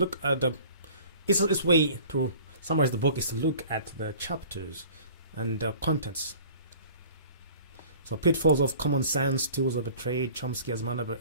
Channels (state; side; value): inverted; both; correlation -0.47